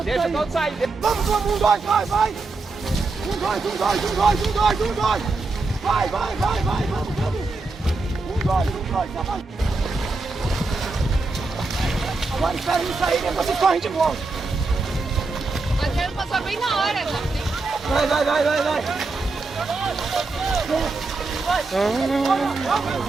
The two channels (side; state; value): left; quieter; 3.7 dB